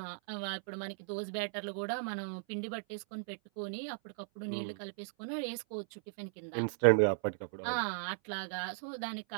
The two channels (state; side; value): silent; left; 53 dB below the other